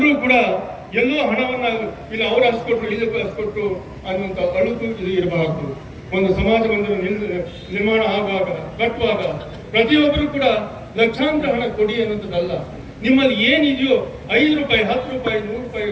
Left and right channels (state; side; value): identical; both; correlation 1.00